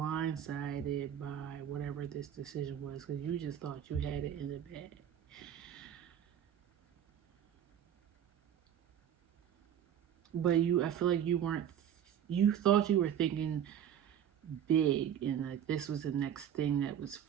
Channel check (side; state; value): left; quieter; 9.6 dB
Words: by whatever this decision was, because you just thought you had it in the bag. But I feel like you thought you were thinking big, and like this was the next thing that was